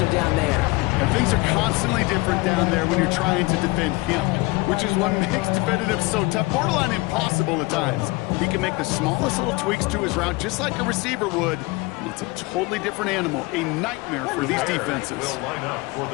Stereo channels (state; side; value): quieter; right; 23.2 dB